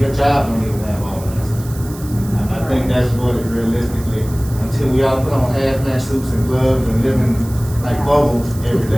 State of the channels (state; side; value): noise; right; hiss, 18 dB below the sound